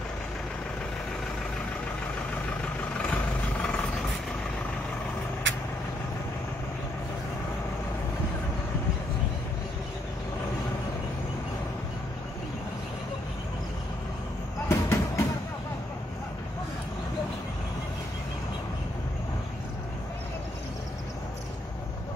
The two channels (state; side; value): normal; both; correlation 0.75